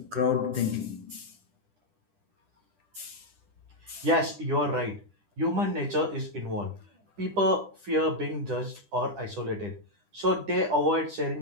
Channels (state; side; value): late; left; 10 ms